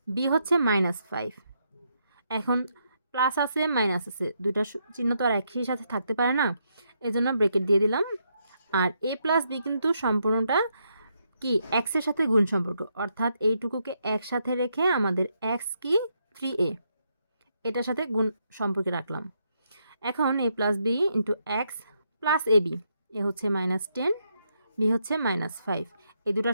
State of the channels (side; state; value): both; inverted; correlation -0.78